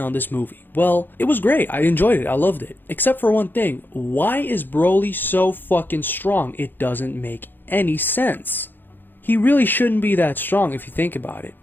this movie? Well, it was great. I enjoyed it. I loved it. Except for one thing. Why is Broly so fucking strong? It doesn't make any sense. He really shouldn't be that strong if you think about it.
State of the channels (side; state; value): right; late; 0.094 ms